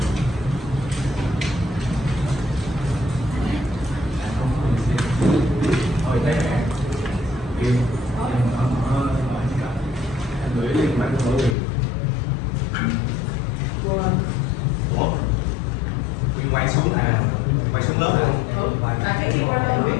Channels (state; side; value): drops out; right; at 11.6 s